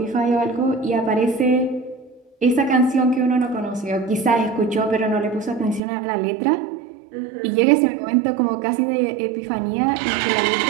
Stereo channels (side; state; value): left; drops out; at 5.8 s